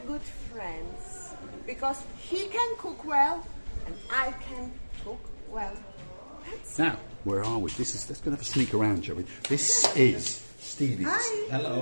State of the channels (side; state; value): both; inverted; correlation -1.00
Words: friends because he can cook well and I can cook well. Now, where are we? Let's go and have a sneak around, shall we? This is Stevie's. Hi. Hello.